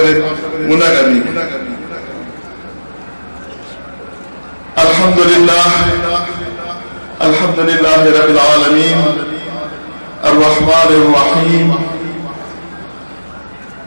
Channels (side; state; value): both; inverted; correlation -1.00